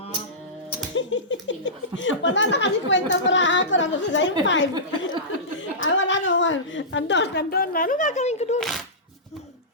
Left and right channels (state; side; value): normal; both; correlation -0.18